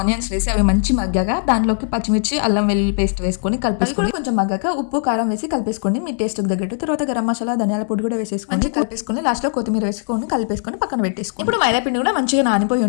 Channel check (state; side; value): silent; right; 64 dB below the other